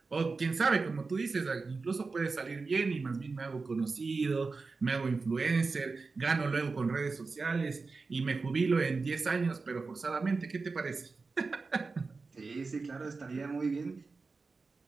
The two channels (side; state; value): left; quieter; 4.2 dB